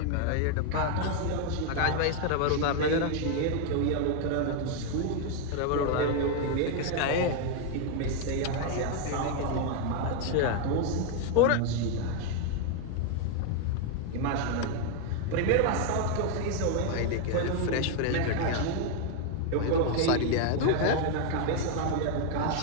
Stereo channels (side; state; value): both; different; correlation 0.01